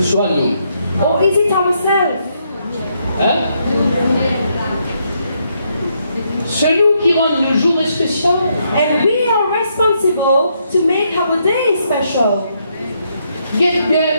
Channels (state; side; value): inverted; both; correlation -0.76